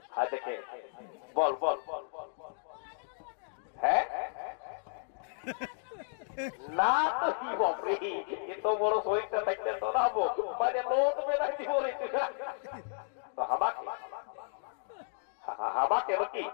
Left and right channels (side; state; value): right; silent; digital silence